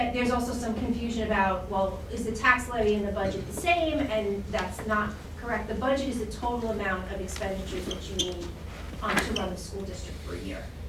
also some confusion about, well, is the tax levy and the budget the same? And that's not correct. The budget is the total amount of expenditures that you need to run the school district for a year.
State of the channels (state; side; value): identical; both; correlation 1.00